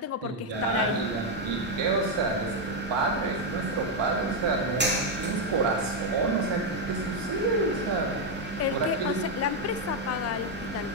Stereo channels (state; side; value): normal; both; correlation 0.02